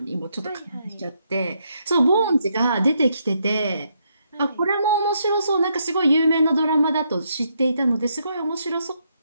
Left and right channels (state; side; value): inverted; both; correlation -0.76